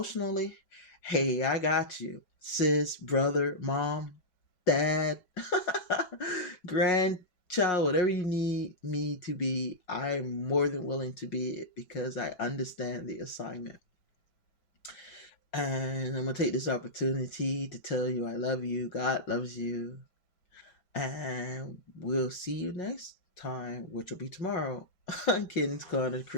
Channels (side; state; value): right; late; 6.0 ms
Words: hey, I got you, sis, brother, mom, dad, grandchild, whatever you need me to be, I'm more than willing to be it because I understand the assignment. And I'm going to take this opportunity to tell you I love you. God loves you. And we'll see you next time, which will be tomorrow on Kids Gonna